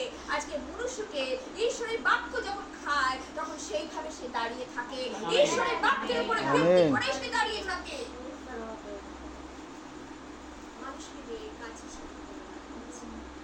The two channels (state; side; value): identical; both; correlation 1.00